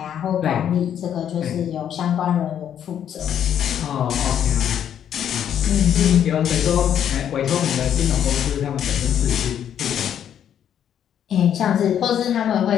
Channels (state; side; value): quieter; right; 9.5 dB